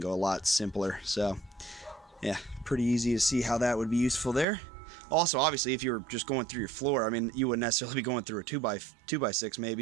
a lot simpler. So yeah, pretty easy to see how that would be useful there. Also, obviously, if you were just going through your floor, I mean, you wouldn't necessarily be going through a 2x6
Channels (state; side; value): drops out; left; at 4.5 s